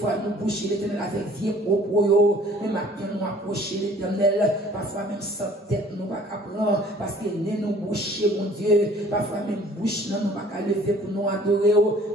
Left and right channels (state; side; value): normal; both; correlation 0.53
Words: nous boucher, l'éternel avec vie propre, mais maintenant, nous approcher l'éternel, parfois même sans tête, nous pas prendre, parce que nous boucher, mon Dieu, parfois même bouche, nous pas lever pour nous adorer,